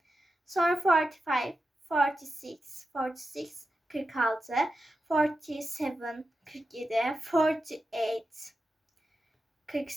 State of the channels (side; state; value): both; normal; correlation 0.90